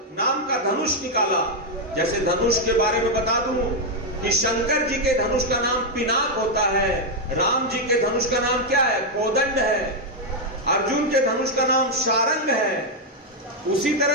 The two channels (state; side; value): normal; both; correlation 0.00